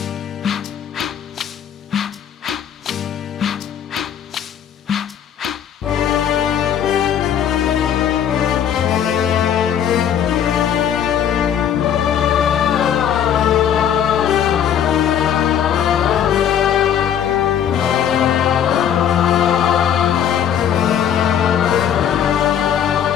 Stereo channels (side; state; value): right; quieter; 9.3 dB